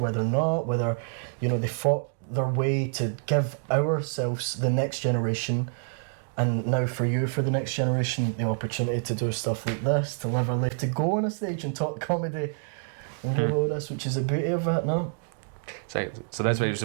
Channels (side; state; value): left; silent; digital silence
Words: not, whether, you know, they fought their way to give ourselves, the next generation, and now for you, for the next generation, the opportunity to do stuff like this, to live our life, to go on a stage and talk comedy and do all this, which is the beauty of it, no? So that's why you're